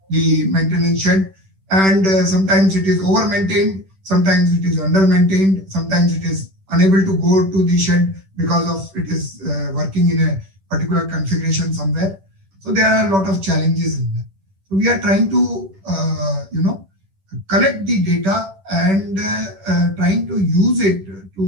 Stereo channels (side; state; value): left; late; 10 ms